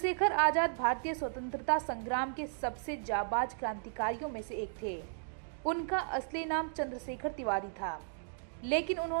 आजाद भारतीय स्वतंत्रता संग्राम के सबसे जाबाज क्रांतिकारियों में से एक थे। उनका असली नाम चंद्रशेखर तिवारी था, लेकिन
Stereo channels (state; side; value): silent; left; digital silence